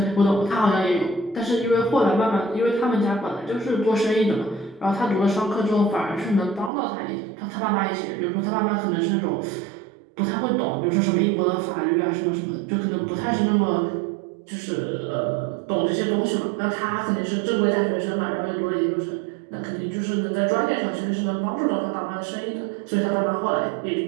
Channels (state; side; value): drops out; left; at 6.7 s